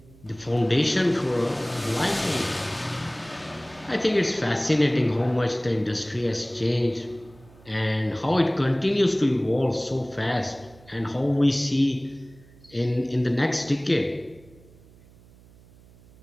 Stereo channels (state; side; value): noise; right; hum, 25 dB below the sound